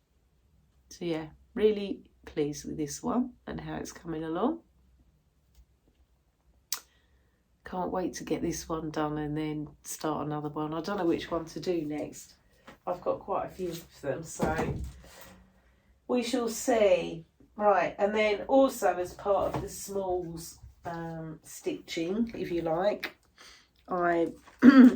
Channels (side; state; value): both; identical; correlation 1.00